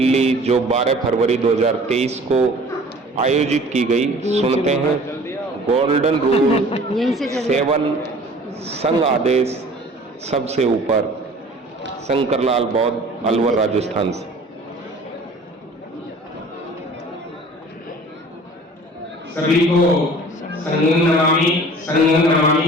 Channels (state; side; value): normal; both; correlation 0.47